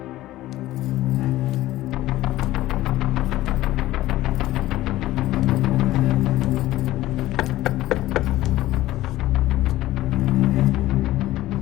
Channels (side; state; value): right; quieter; 15.9 dB